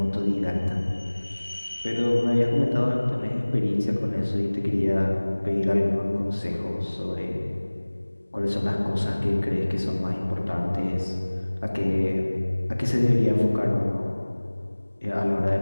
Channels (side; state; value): both; inverted; correlation -1.00